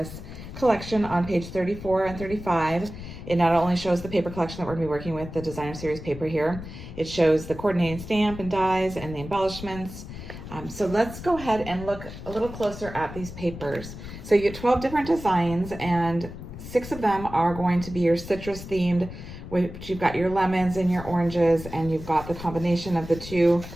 collection on page 34 and 35. It not only shows the paper collection that we're going to be working with, the designer series paper here, it shows the coordinating stamp and dies and the embellishments. So let's go ahead and look a little closer at these papers. So you get 12 different designs, and 6 of them are going to be your citrus themed, which you've got your lemons and your oranges, and you've got the combination of the two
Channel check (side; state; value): left; noise; rumble, 12 dB below the sound